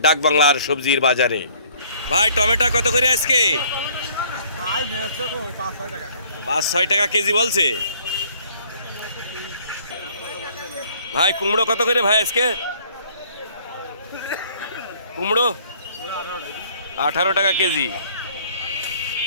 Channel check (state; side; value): inverted; both; correlation -0.58